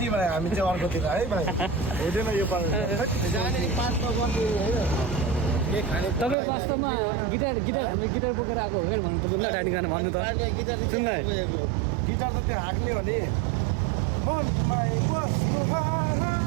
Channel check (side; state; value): left; drops out; at 6.4 s